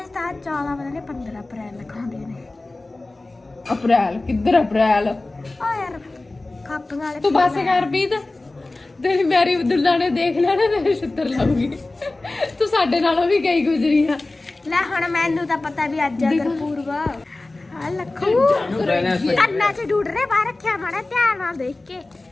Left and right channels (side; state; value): right; quieter; 3.0 dB